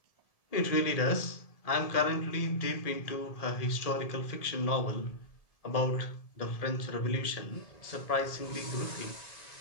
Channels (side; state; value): right; late; 1.7 ms